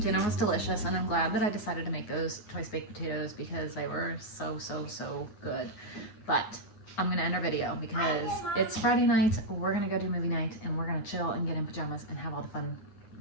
was delicious, and I'm glad that I decided to make those twice baked potatoes because they were so good. But I'm gonna end our video because it's Friday night. We're gonna go do movie night, and we're gonna chill and get in pajamas and have all the fun,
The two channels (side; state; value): right; late; 9.5 ms